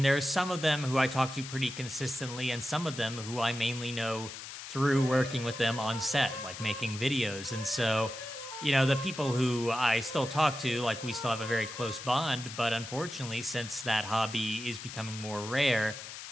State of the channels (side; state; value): left; noise; hiss, 11 dB below the sound